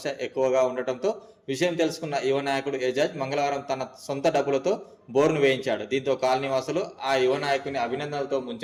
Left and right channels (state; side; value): identical; both; correlation 1.00